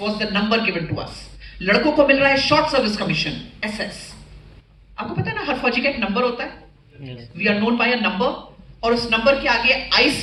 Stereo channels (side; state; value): both; identical; correlation 1.00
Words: the number given to us. लड़कों को मिल रहा है शॉर्ट सर्विस कमीशन, SS. आपको पता है ना, हर फौजी का एक नंबर होता है. We are known by a number, और उस नंबर के आगे